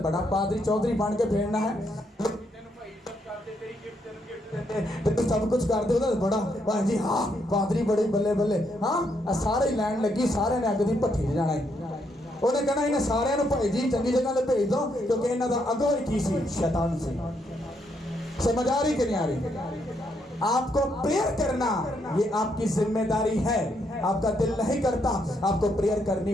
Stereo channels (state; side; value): normal; both; correlation 0.76